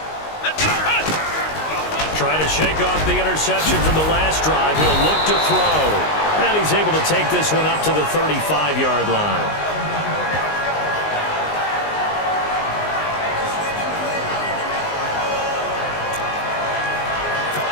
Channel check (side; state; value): right; late; 19 ms